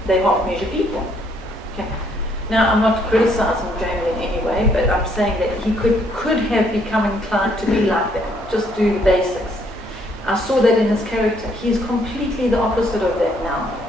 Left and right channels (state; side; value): normal; both; correlation 0.68